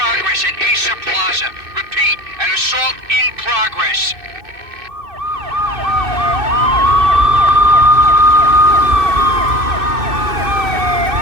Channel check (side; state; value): left; late; 2.6 ms